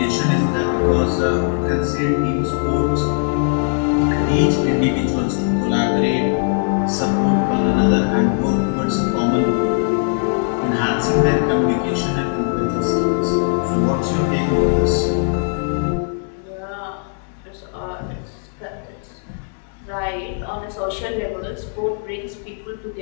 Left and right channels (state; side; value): silent; right; 66 dB below the other